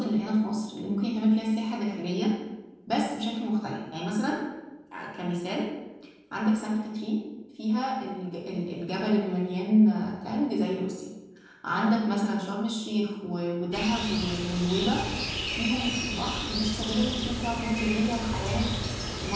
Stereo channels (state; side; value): identical; both; correlation 1.00